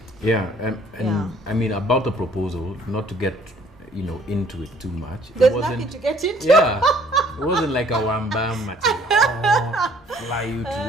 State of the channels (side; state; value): both; normal; correlation 0.58